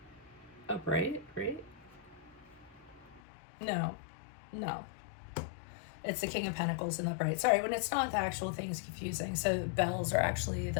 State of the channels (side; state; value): right; drops out; at 3.2 s